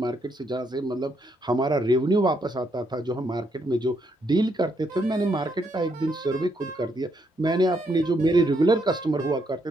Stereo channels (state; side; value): normal; both; correlation 0.75